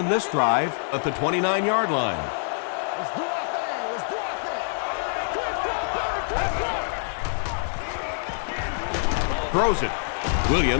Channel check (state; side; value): silent; right; 57 dB below the other